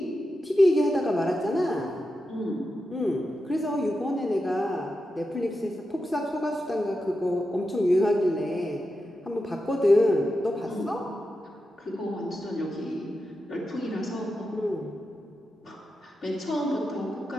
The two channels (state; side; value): normal; both; correlation 0.89